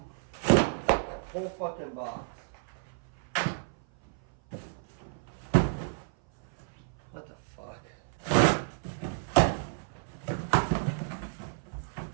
that whole fucking box. What the fuck?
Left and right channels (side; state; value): left; silent; 56 dB below the other